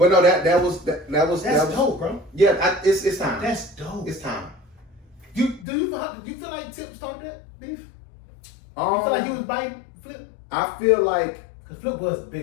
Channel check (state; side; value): drops out; right; at 5.7 s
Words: no, that was dope, bro. Yeah, it's time. That's dope. It's time. You feel like Tip started that beef? You feel like he was biting Flip? I feel like because Flip was